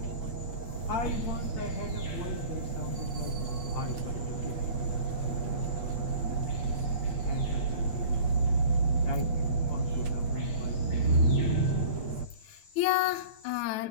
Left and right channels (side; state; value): right; late; 8.9 ms